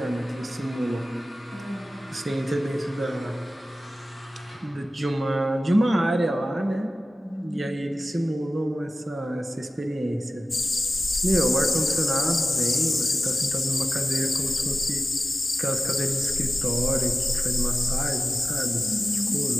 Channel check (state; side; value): normal; both; correlation 0.95